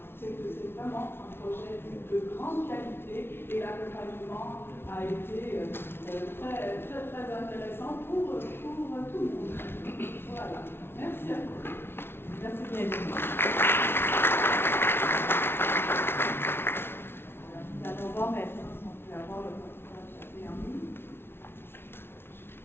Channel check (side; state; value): right; late; 0.11 ms